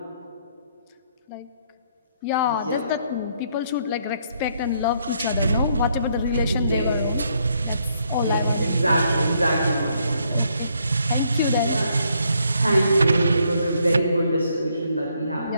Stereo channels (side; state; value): both; inverted; correlation -0.71